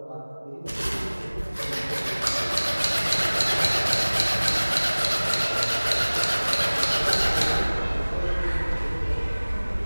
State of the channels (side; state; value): both; inverted; correlation -1.00